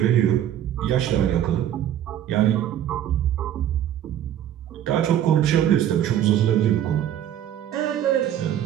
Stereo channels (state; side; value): quieter; left; 10.9 dB